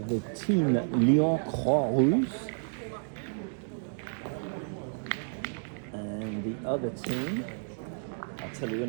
the team Lyon Croix Rousse and the other team, I'll tell you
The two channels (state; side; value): silent; left; digital silence